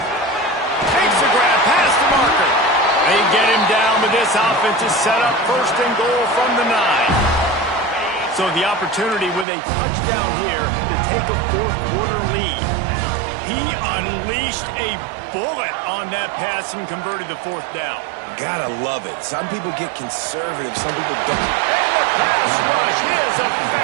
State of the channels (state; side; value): drops out; left; at 9.5 s